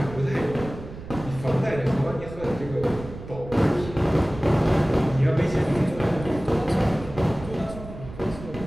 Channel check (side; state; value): right; noise; rumble, 13 dB below the sound